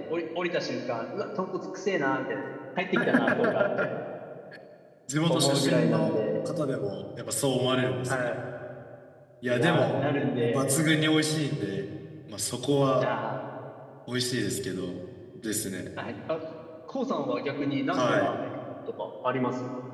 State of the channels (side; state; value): both; identical; correlation 1.00